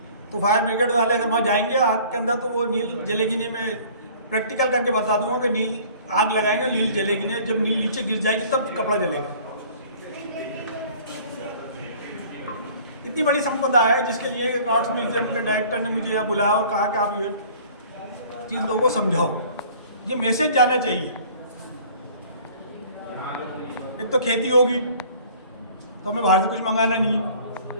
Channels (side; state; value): both; inverted; correlation -0.50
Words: तो फायर ब्रिगेड वाले अगर वहाँ जाएंगे आग के अंदर तो वो नील जलेगी नहीं। मैं प्रैक्टिकल करके बता दूंगा कि नील आग लगाएंगे नील जलेगी नहीं, जब नील नीचे गिर जाएगी तब कपड़ा जलेगा। इतनी बड़ी संपदा है जिसके लिए एक आर्ट्स म्यूजियम के डायरेक्टर ने मुझे यहाँ बुलाया और कहा कि आप ये चीज़ लोगों को समझाओ, ये मैसेज जाना चाहिए। एक तो खेती होगी तो हमें बाहर से कुछ मंगाना नहीं।